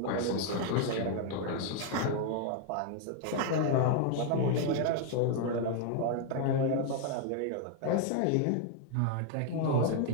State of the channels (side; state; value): both; different; correlation 0.00